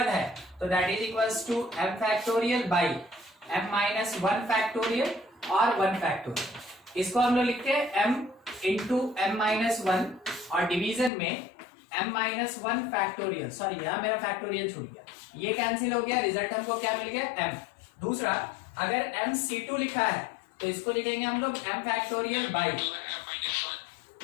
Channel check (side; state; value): right; drops out; at 11.1 s